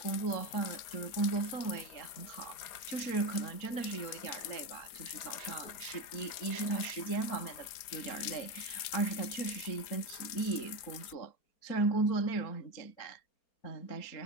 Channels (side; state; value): right; late; 4.3 ms